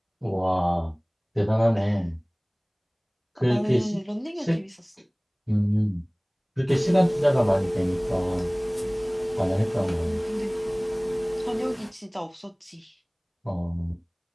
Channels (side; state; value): both; identical; correlation 1.00